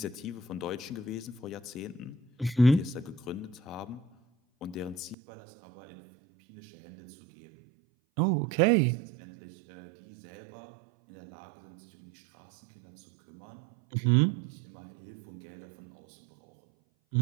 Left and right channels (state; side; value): drops out; left; at 5.2 s